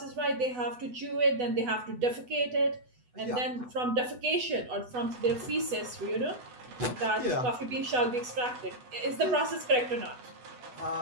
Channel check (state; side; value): late; left; 8.1 ms